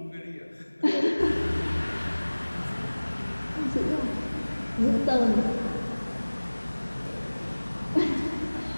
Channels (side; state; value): both; inverted; correlation -1.00